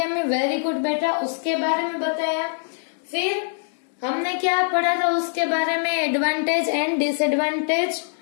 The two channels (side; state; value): right; silent; digital silence